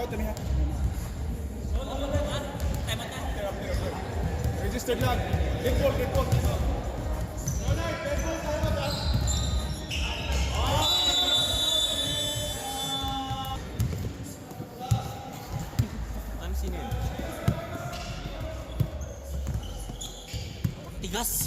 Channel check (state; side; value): identical; both; correlation 1.00